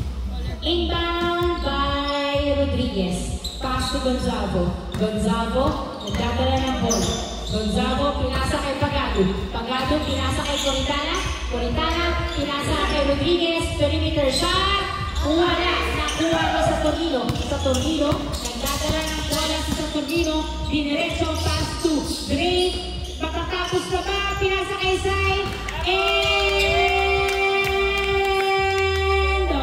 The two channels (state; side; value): identical; both; correlation 1.00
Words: Inbound by Rodriguez. Pass to Gonzalo. Gonzalo, nagdadala ng bola. Gonzalo, pinasa kay Pagado. Pagado, pinasa kay Coritana. Coritana, pinasa kay Rodriguez. Perimeter shot. Wala. Nakuha mo sa Tornino. Sa Tornino, nagdadala ng bola sa Tornino. Diniretso, pass to Drake. Matatapos na ba? Pinasa kay Sai. End